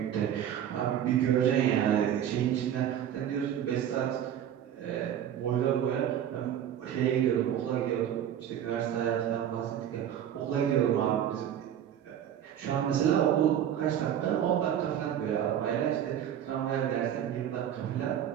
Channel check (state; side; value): quieter; left; 10.1 dB